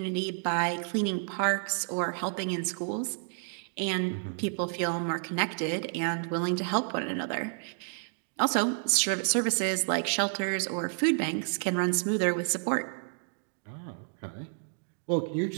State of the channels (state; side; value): silent; left; 58 dB below the other